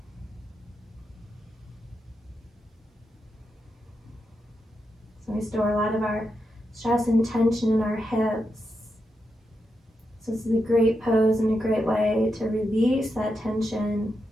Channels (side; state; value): both; normal; correlation 0.86